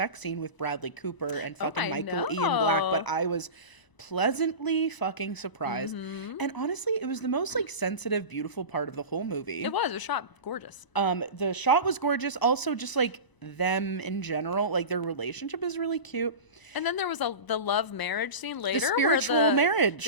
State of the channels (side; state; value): right; late; 1.0 ms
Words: scene with Bradley Cooper and fucking I Michael Ian Black, but know. I was pleasantly fucking surprised. And honestly, it was the most like sensitive, beautiful part of the whole movie. It was shot gorgeous. The shot was gorgeous. Also, just like them in general, like their relationship is really cute. And then there was the love marriage scene later. spiritual where marriage.